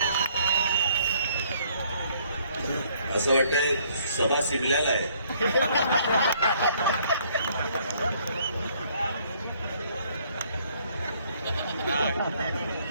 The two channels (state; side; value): inverted; both; correlation -0.64